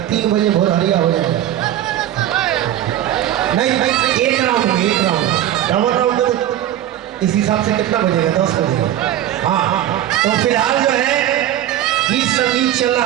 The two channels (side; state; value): left; quieter; 12.2 dB